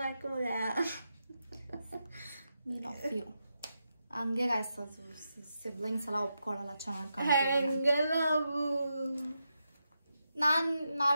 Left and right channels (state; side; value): inverted; both; correlation -0.86